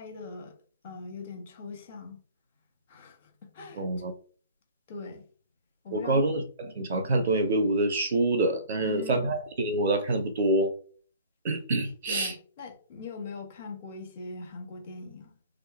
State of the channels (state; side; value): inverted; both; correlation -0.45